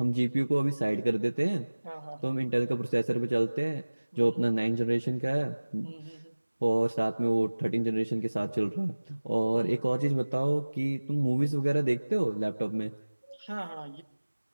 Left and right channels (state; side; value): inverted; both; correlation -1.00